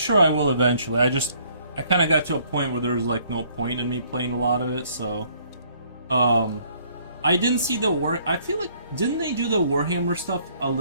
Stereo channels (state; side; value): inverted; both; correlation -0.63